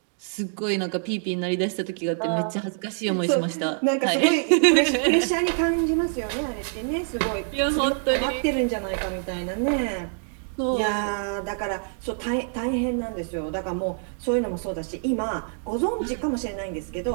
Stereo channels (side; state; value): left; silent; 61 dB below the other